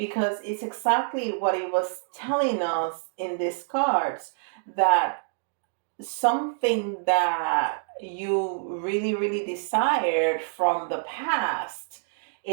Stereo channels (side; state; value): left; silent; digital silence